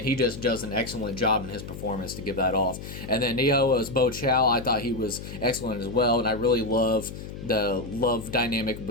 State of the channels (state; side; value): noise; left; hum, 11 dB below the sound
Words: he just does an excellent job in his performance to give that off. And then Neo as Bo Chow, I thought he was excellent as well. And I really love the love dynamic